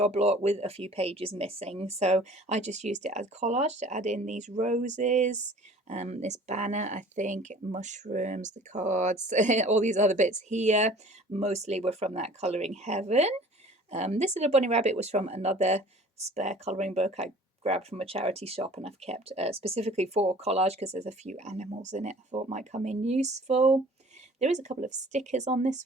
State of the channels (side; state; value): both; normal; correlation 0.48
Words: lot with a few pages missing, so I just used it as collage to add in these roses, this banner, I think, mushrooms, the cards, all these other bits here mostly were from that Colouring Heaven. This little bunny rabbit was from another spare colouring book I grabbed from a charity shop, and I've kept specifically for collage because there's a few animals in it I thought might come in useful. There is a couple of stickers on this